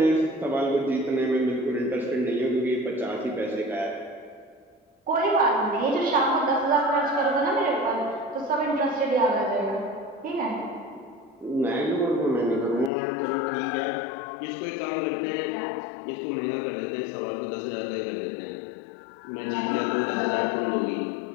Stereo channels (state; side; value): drops out; right; at 12.9 s